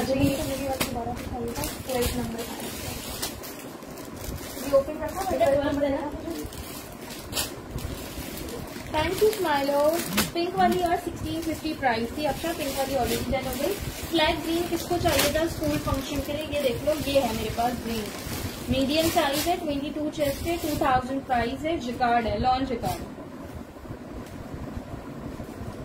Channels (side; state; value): both; identical; correlation 1.00